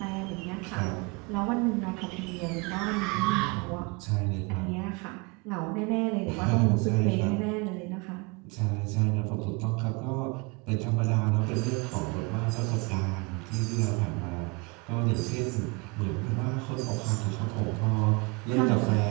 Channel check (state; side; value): quieter; left; 28.6 dB